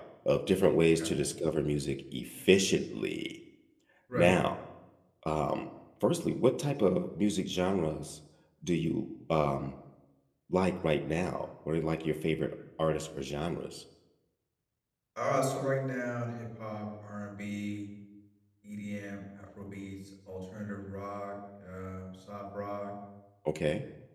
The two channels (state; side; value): identical; both; correlation 1.00